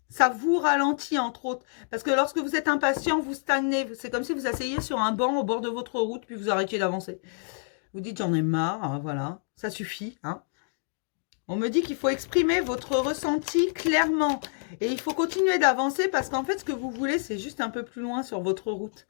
Ça vous ralentit entre autres. Parce que lorsque vous êtes impatient, vous stagnez. C'est comme si vous asseyez sur un banc au bord de votre route, puis vous arrêtiez d'avancer. Vous dites j'en ai marre, hein, voilà, ça suffit, hein. On me dit qu'il faut exprimer votre ressenti clairement. Et il faut continuer d'avancer parce qu'en fait, ce que vous voulez, c'est juste un peu plus loin sur votre route.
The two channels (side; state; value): right; silent; digital silence